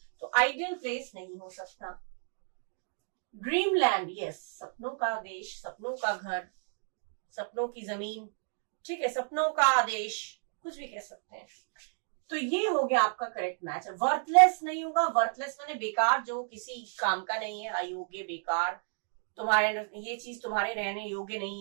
तो आइडियल प्लेस नहीं हो सकता। ड्रीम लैंड, यस, सपनों का देश, सपनों का घर, सपनों की जमीन। ठीक है, सपनों का देश, कुछ भी कह सकते हैं। तो ये हो गया आपका करेक्ट मैच। वर्थलेस नहीं होगा। वर्थलेस माने बेकार, जो किसी काम का नहीं है, अयोग्य, बेकार, तुम्हारे ये चीज तुम्हारे रहने योग्य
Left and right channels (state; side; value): silent; left; digital silence